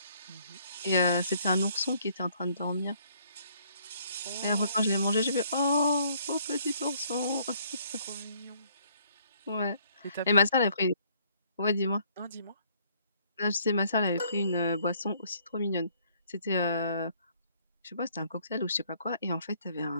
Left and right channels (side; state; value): both; inverted; correlation -0.64